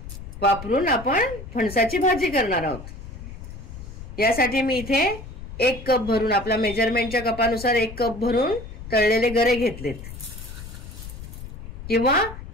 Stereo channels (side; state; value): left; noise; rumble, 12 dB below the sound